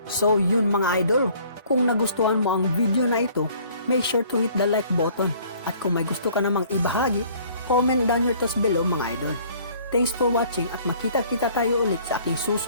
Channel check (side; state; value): both; inverted; correlation -0.56